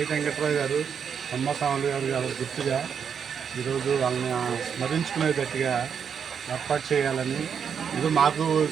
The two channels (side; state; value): left; quieter; 7.2 dB